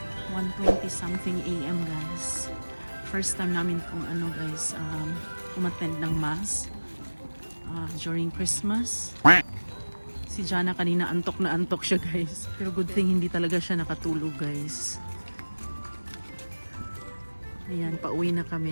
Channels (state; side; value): inverted; both; correlation -1.00